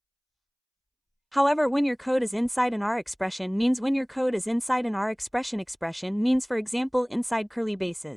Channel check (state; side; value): identical; both; correlation 1.00